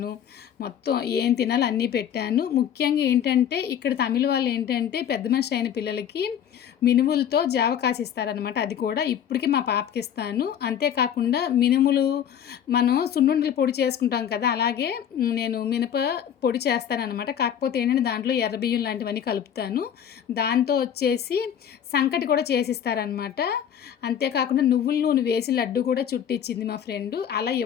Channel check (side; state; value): right; quieter; 9.2 dB